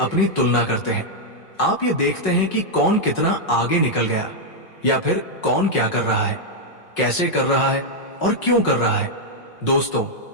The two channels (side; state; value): right; late; 5.4 ms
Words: तुलना करते हैं। आप ये देखते हैं कि कौन कितना आगे निकल गया, या फिर कौन क्या कर रहा है, कैसे कर रहा है और क्यों कर रहा है। दोस्तों,